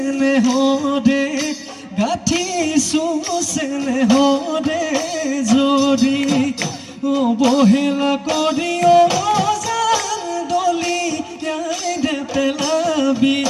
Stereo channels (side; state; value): both; identical; correlation 1.00